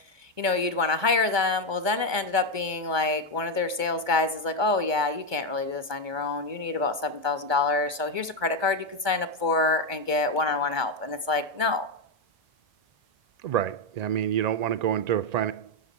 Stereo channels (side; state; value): left; late; 1.2 ms